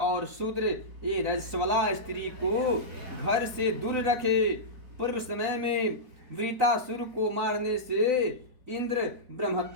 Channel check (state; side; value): late; left; 4.3 ms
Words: शूद्र ये रजस्वला स्त्री को घर से दूर रखे। पूर्व समय में वृतासुर को मारने से इंद्र